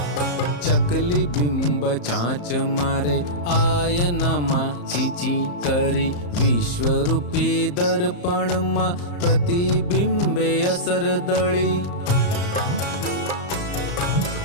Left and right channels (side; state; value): right; late; 34 ms